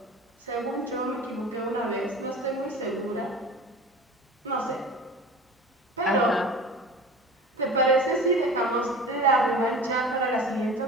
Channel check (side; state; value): both; normal; correlation 0.37